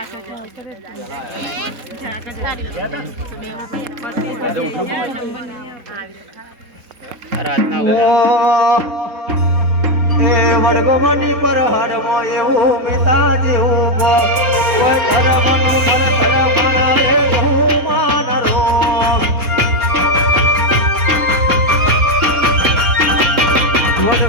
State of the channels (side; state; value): left; late; 3.9 ms